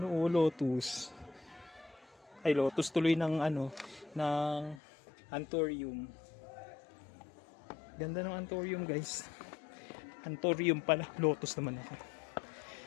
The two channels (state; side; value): drops out; right; at 4.8 s